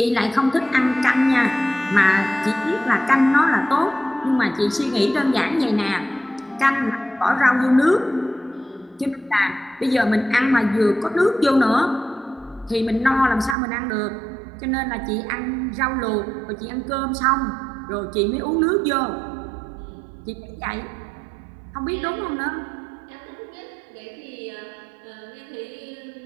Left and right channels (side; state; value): left; drops out; at 13.6 s